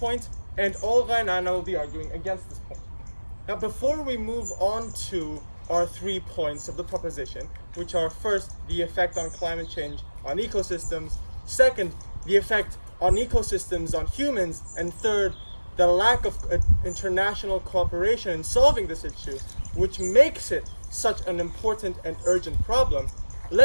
and Olga and Anna will be arguing against this point. Now, before we move on to our 3 points of the proposition, which are first, the effect on climate change on ecosystems, second, the effect on ecosystems on humans, and third, the lack of international cooperation in solving this issue, which makes it such an important and urgent problem,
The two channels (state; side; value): inverted; both; correlation -1.00